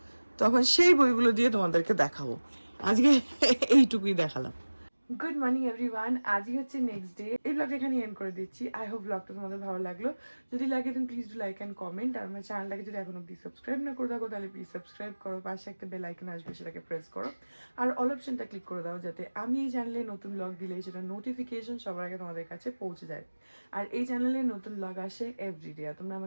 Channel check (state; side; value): inverted; both; correlation -1.00